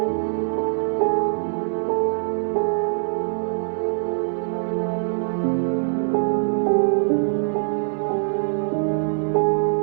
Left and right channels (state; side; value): silent; left; 64 dB below the other